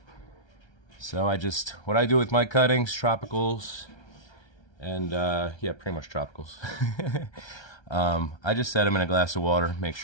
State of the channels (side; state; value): right; late; 1.3 ms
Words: So what I do with my cuttings, tropicals, and yeah, pretty much tropicals. I just set them in a glass of water, make